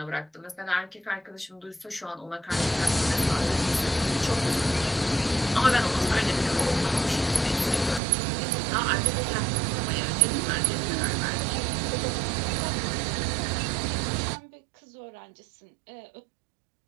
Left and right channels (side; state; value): left; drops out; at 8.0 s